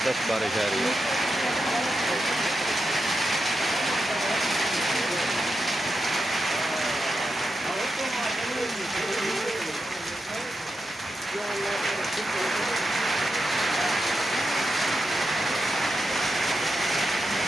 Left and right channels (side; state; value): both; normal; correlation 0.87